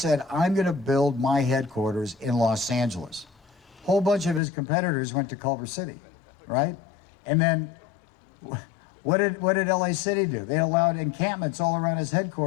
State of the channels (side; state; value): right; drops out; at 4.4 s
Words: I'm going to build my headquarters in Los Angeles. A whole bunch of his competitors went to Culver City, right? And then what did LA City do? They allowed encampments all around his